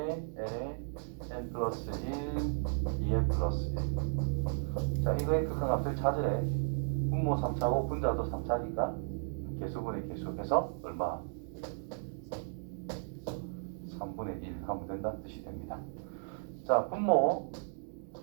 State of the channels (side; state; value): left; silent; digital silence